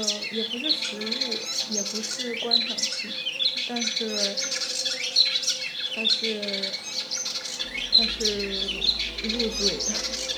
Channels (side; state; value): both; identical; correlation 1.00